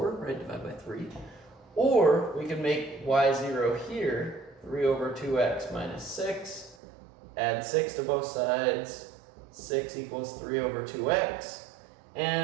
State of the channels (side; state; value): left; drops out; at 6.8 s